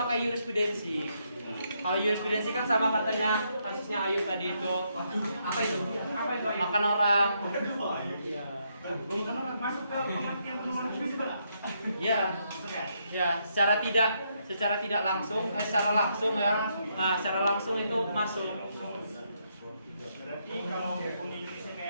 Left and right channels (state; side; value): inverted; both; correlation -0.77